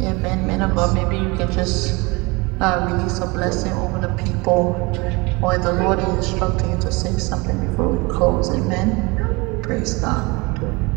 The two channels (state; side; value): quieter; left; 25.8 dB